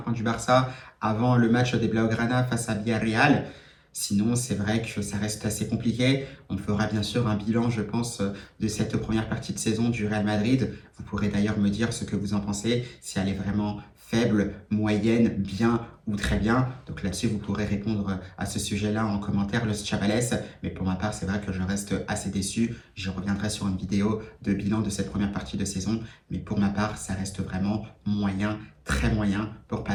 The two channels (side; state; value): both; identical; correlation 1.00